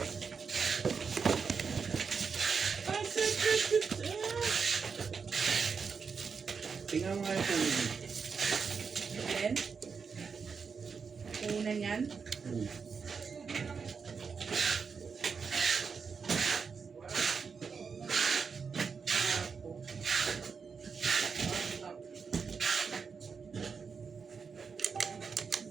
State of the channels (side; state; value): left; quieter; 5.7 dB